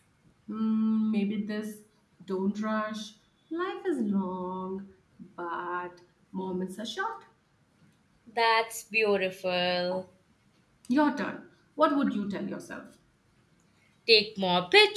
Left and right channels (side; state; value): both; identical; correlation 1.00